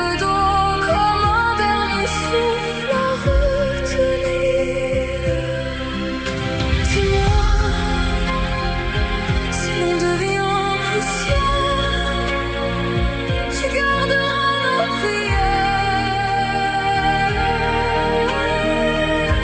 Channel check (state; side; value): identical; both; correlation 1.00